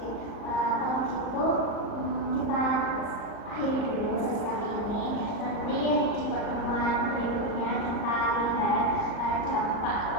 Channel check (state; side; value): late; right; 39 ms